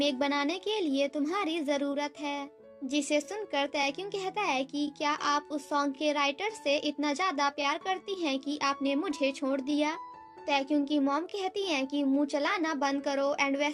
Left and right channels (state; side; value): identical; both; correlation 1.00